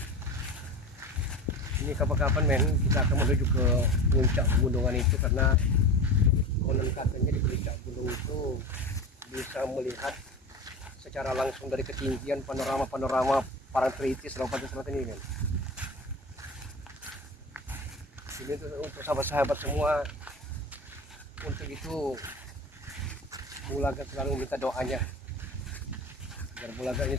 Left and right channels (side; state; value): both; normal; correlation 0.30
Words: Ini kapan-kapan, men, kita akan menuju ke puncak pegunungan itu, karena konon katanya di puncak gunung itu bisa melihat secara langsung dari ketinggian panorama Parangtritis Lompatan Selatan ini, men. Ini untuk sahabat-sahabat semua, untuk itu Bulaga selalu minta doanya agar Bulaga